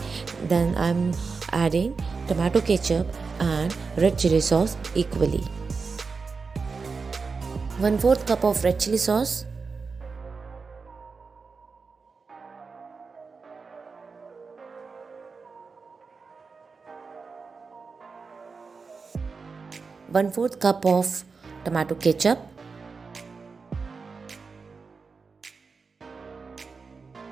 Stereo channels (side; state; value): left; quieter; 4.8 dB